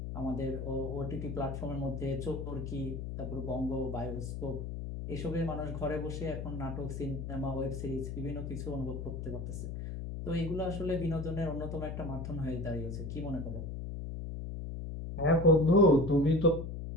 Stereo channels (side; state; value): left; noise; hum, 6 dB below the sound